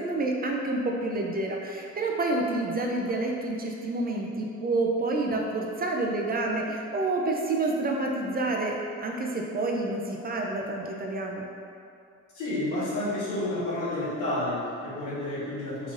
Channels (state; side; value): normal; both; correlation 0.30